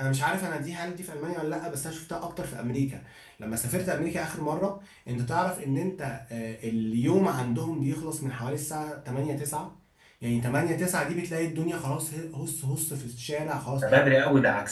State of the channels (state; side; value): identical; both; correlation 1.00